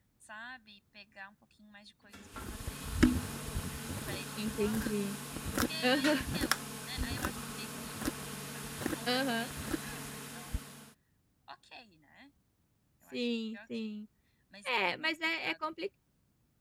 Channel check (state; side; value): identical; both; correlation 1.00